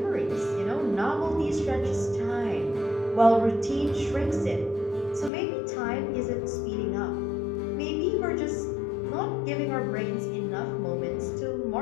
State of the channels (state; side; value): drops out; right; at 5.3 s